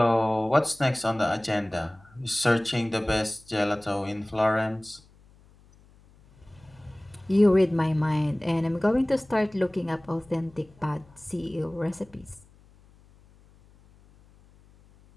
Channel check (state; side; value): noise; left; hum, 28 dB below the sound